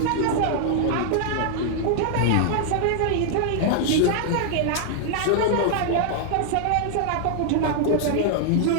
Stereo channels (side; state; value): both; different; correlation -0.01